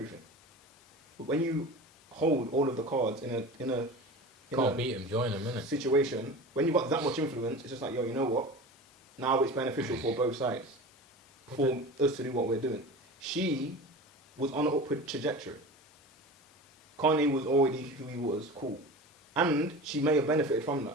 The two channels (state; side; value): normal; both; correlation 0.33